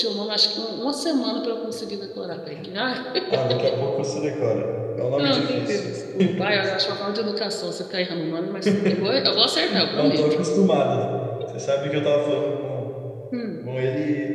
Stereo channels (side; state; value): both; identical; correlation 1.00